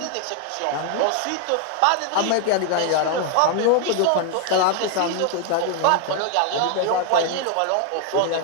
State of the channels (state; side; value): different; both; correlation 0.00